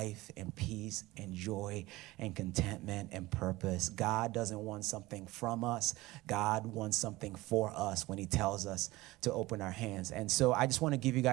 and peace and joy and contentment and purpose. God doesn't want something from us. God wants something for us when he tells us to open our hands. And so I just want to give you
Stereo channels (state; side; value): quieter; left; 19.4 dB